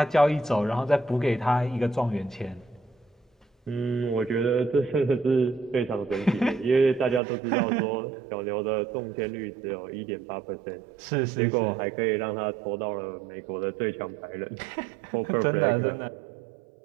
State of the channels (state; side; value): drops out; left; at 7.2 s